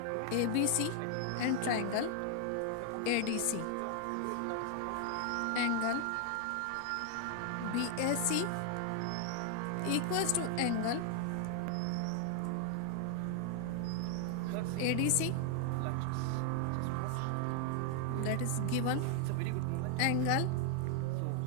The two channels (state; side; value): different; both; correlation 0.00